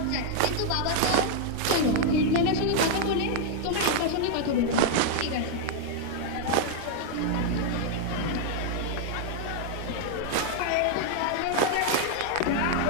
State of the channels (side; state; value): both; different; correlation 0.00